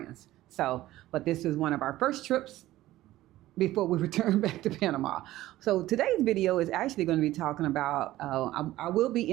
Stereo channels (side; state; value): left; quieter; 15.7 dB